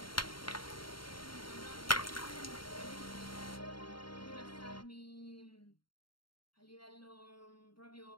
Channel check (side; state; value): right; late; 0.73 ms